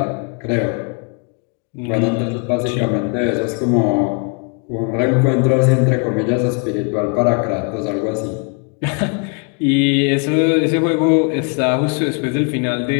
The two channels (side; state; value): right; quieter; 34.6 dB